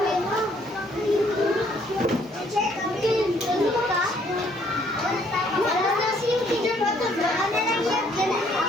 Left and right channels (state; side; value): normal; both; correlation 0.65